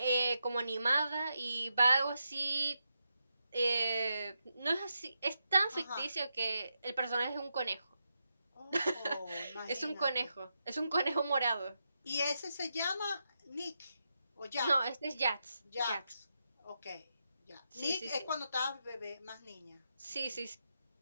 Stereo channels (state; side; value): inverted; both; correlation -0.85